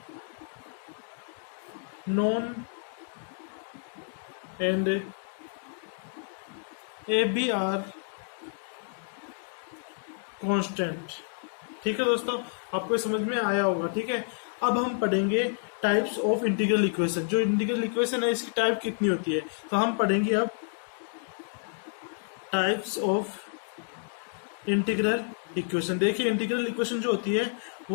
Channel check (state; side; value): silent; right; digital silence